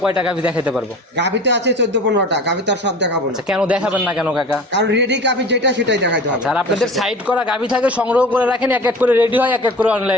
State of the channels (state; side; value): normal; both; correlation 0.38